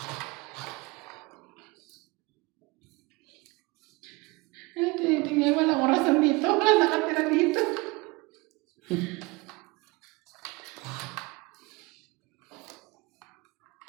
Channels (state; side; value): quieter; left; 24.6 dB